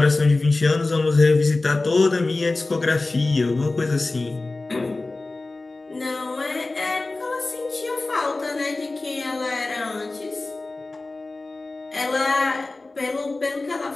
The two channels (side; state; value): right; quieter; 3.2 dB